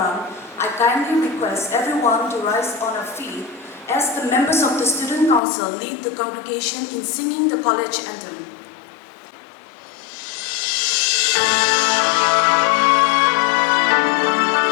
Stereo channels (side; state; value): right; drops out; at 5.4 s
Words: I kindly request everyone to rise on our feet as the members of the Student Council lead the congregation in singing the college anthem.